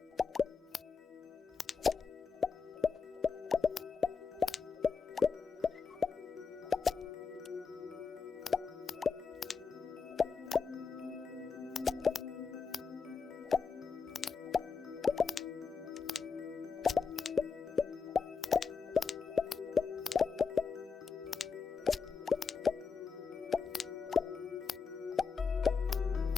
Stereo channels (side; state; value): right; quieter; 5.3 dB